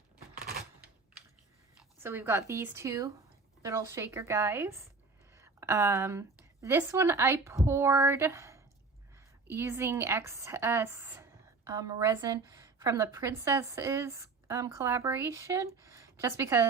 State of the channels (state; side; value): quieter; left; 4.2 dB